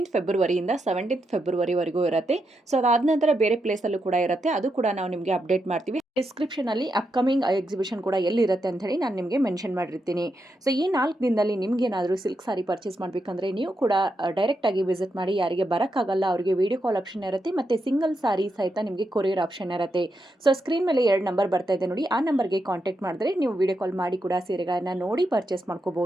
ಫೆಬ್ರವರಿಯಿಂದ 17th ಫೆಬ್ರವರಿವರೆಗೂ ಇರುತ್ತೆ. ಸೊ ಅದಾದ ನಂತರ ಬೇರೆ ಪ್ಲೇಸಲ್ಲೂ ಕೂಡ ಇರುತ್ತೆ. ಅದು ಕೂಡ ನಾವು ನಿಮಗೆ ಅಪ್ಡೇಟ್ ಮಾಡ್ತೀವಿ. ಡಿಸ್ಕ್ರಿಪ್ಷನಲ್ಲಿ ಅಪ್ಕಮಿಂಗ್ ಎಕ್ಸಿಬಿಷನ್ ಕೂಡ ಎಲ್ಲಿರುತ್ತೆ ಅಂತ ಹೇಳಿ ನಾನು ನಿಮಗೆ ಮೆನ್ಷನ್ ಮಾಡಿರ್ತೀನಿ. ಸೊ ಈ 4 ದಿನದಲ್ಲಿ ನಿಮಗೇನಾದರೂ ಸಿಲ್ಕ್ ಸಾರಿ ಪರ್ಚೇಸ್ ಮಾಡಬೇಕಂದ್ರೆ ನೀವು ಕೂಡ ಡೈರೆಕ್ಟಾಗಿ ವಿಸಿಟ್ ಮಾಡಿ. ಯಾರಿಗೆ ಬರೋಕ್ಕಾಗಲ್ಲ ಅವರಿಗೆ ವಿಡಿಯೋ ಕಾಲ್ ಆಪ್ಷನ್ ಇರುತ್ತೆ, ಮತ್ತು ಸಿಂಗಲ್ ಸಾರಿ ಸಹಿತ ನಿಮಗೆ ಕೊರಿಯರ್ ಆಪ್ಷನ್ ಇರುತ್ತೆ. ಸೊ ಸ್ಕ್ರೀನ್ ಮೇಲೆ 2 ನಂಬರ್ ಬರ್ತಾ ಇದೆ ನೋಡಿ, ಆ ನಂಬರ್ಗೆ ಕಾಂಟ್ಯಾಕ್ಟ್ ಮಾಡಿದ್ರೆ ನೀವು ವಿಡಿಯೋ ಕಾಲ್ ಮಾಡಿ ಕೂಡ ಸೀರೆಗಳನ್ನು ನೋಡಿ ಪರ್ಚೇಸ್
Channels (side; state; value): both; normal; correlation 0.84